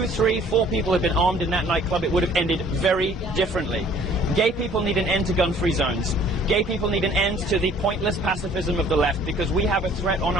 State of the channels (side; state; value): both; normal; correlation 0.55